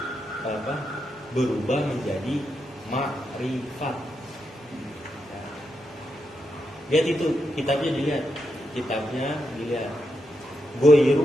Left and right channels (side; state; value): both; normal; correlation 0.84